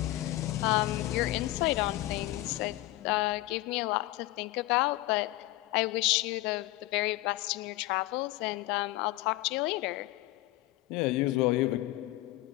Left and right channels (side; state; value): right; quieter; 18.0 dB